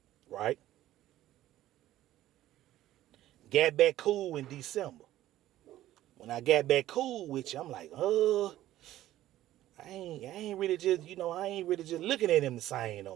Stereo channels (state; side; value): quieter; left; 14.0 dB